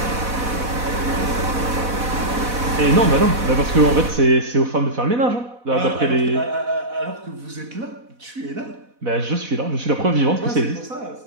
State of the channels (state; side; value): late; left; 4.1 ms